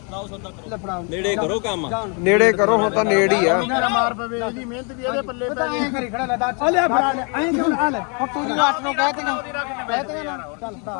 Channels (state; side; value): quieter; right; 36.3 dB